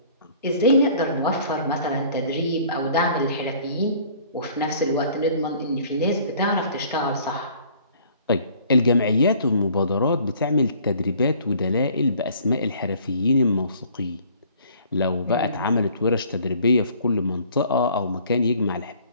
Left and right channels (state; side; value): inverted; both; correlation -0.55